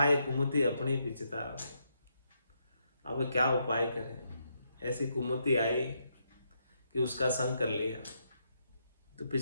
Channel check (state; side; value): inverted; both; correlation -0.79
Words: कुमति अपनी पिछता। अब क्या उपाय करें, ऐसी कुमति आई कि उसका संग कर लिया, तो